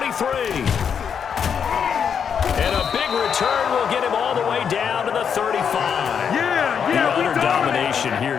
And a big return will get him all the way down to the 35. The utter domination here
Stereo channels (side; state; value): right; quieter; 7.3 dB